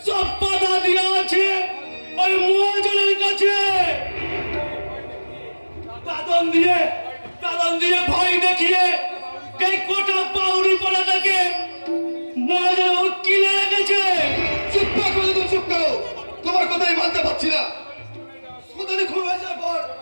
সব পাতা দেওয়া আছে ওই মহাজনের কাছে। দাদন দিয়ে ভয় দেখিয়ে এই কোটা পাউরি পড়াটাকে মহাজন কিনে রেখেছে। চুপ করো, তুমি চুপ করো। তোমার কথাই মানতে পারছি না। সোনালি খুন হয়ে যাওয়ার পর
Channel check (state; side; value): inverted; both; correlation -1.00